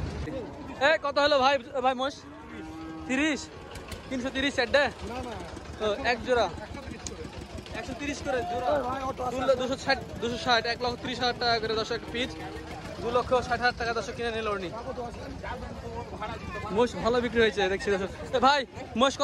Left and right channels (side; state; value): both; identical; correlation 1.00